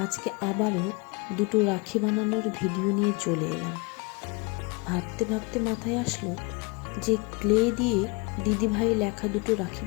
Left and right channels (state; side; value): quieter; right; 28.2 dB